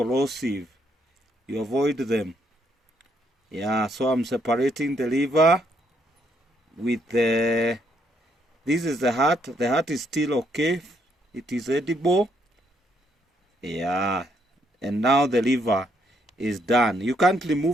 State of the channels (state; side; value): normal; both; correlation 0.73